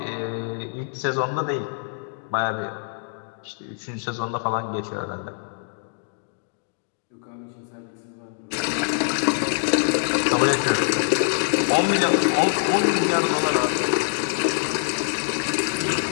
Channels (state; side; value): silent; right; digital silence